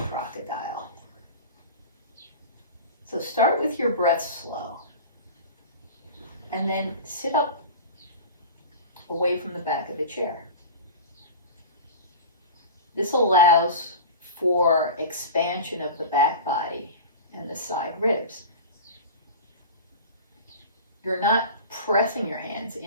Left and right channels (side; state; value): both; inverted; correlation -0.32